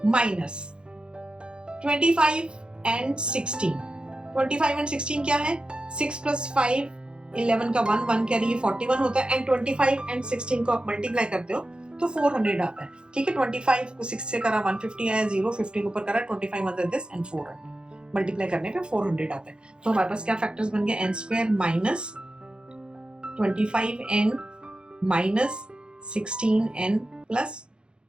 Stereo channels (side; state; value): left; late; 0.052 ms